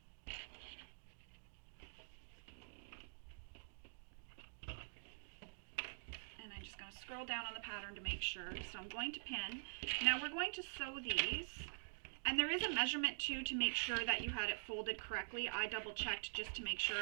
Scroll down on the pattern to make sure. So I'm going to pin. Now we're going to sew these And there is a measurement too to make sure that you had it folded correctly. I double checked just to make sure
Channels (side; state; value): left; silent; digital silence